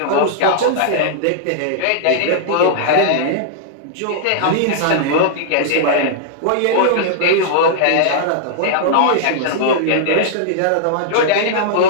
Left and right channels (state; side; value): different; both; correlation -0.01